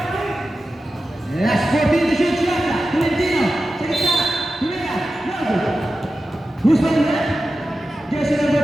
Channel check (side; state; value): both; normal; correlation 0.93